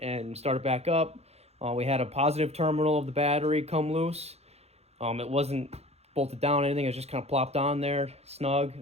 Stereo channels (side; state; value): left; late; 0.30 ms